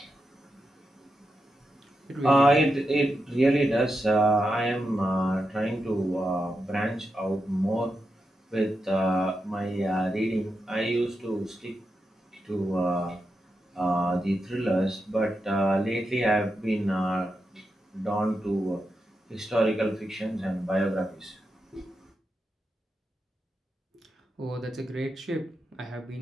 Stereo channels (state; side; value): normal; both; correlation 0.87